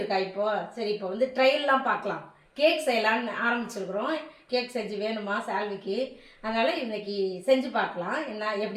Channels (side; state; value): both; identical; correlation 1.00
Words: இருக்கா. இப்போ சரி, இப்போ வந்து ட்ரையல்லாம் பார்க்கலாம். கேக் செய்யலான்னு ஆரம்பிச்சிருக்கிறோம். கேக் செஞ்சு வேணுமா சால்விக்கு, அதனால் இன்னைக்கு செஞ்சு பார்க்கலாம் என்ன